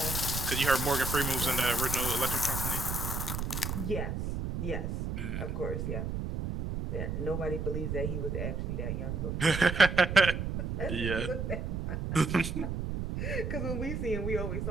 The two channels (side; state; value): right; noise; rumble, 3 dB below the sound